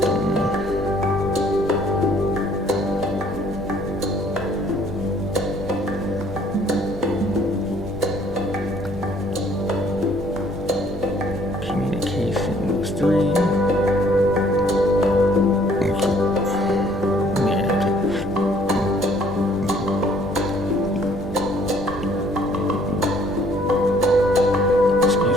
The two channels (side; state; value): right; noise; rumble, 17 dB below the sound